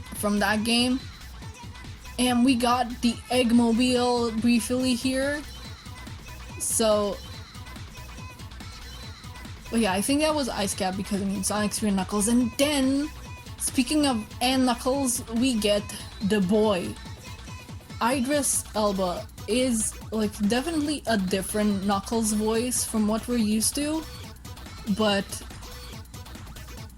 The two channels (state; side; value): identical; both; correlation 1.00